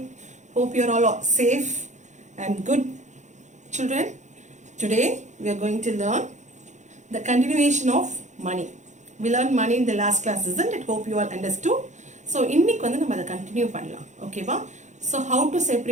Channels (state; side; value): late; left; 0.35 ms